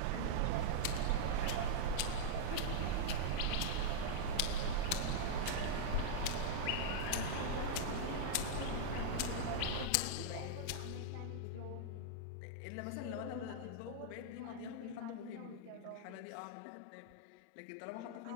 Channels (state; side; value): different; both; correlation -0.01